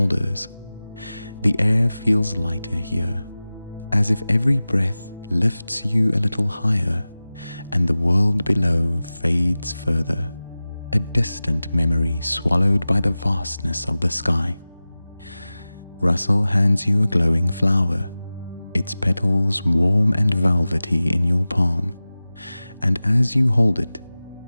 The air feels lighter here, as if every breath lifts you a little higher, and the world below fades further, a distant memory swallowed by the vastness of the sky. Russell hands you a glowing flower, its petals warm and velvety in your palm, and as you hold it,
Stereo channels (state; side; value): inverted; both; correlation -0.97